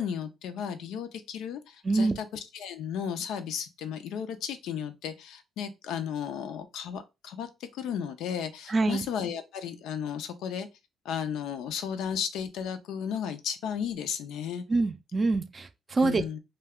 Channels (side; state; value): both; normal; correlation 0.74